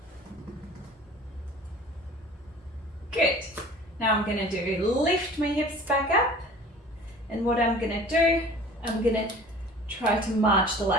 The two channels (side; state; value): both; normal; correlation 0.45